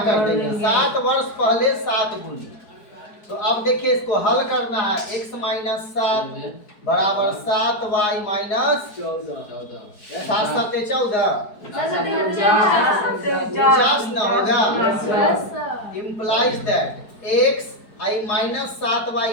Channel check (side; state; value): right; late; 4.7 ms